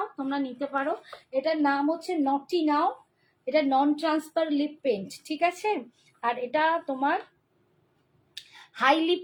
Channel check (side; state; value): both; identical; correlation 1.00